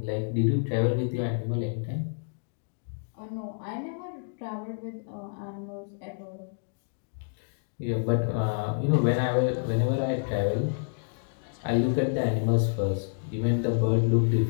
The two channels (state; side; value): silent; right; digital silence